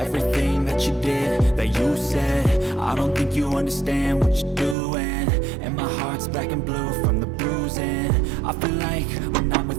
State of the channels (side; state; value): left; drops out; at 4.8 s